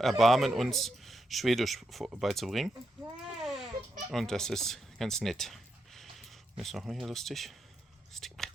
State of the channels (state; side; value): normal; both; correlation 0.83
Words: uns Schwedisch beizubringen. Und das ist ganz nett. Ist noch mal hier lustig.